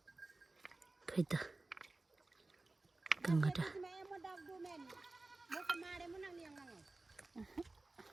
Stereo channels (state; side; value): quieter; left; 3.1 dB